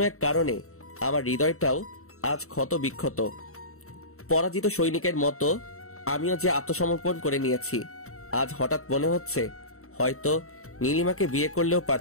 এক কারণে আমার হৃদয়টাও আজ ক্ষত বিক্ষত। পরাজিত সৈনিকের মতো আমিও যে আত্মসমর্পণ করে নিয়েছি। আজ হঠাৎ মনে হচ্ছে হয়তো নীলিমাকে বিয়ে করলেও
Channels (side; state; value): right; late; 0.64 ms